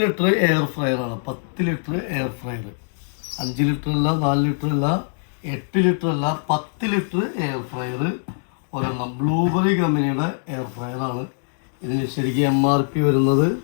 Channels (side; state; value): right; silent; digital silence